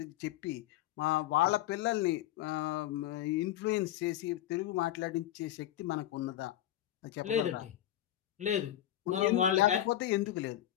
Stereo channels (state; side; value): quieter; right; 12.9 dB